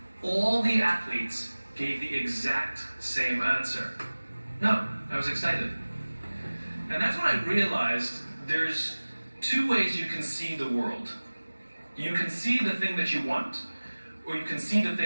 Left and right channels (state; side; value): inverted; both; correlation -1.00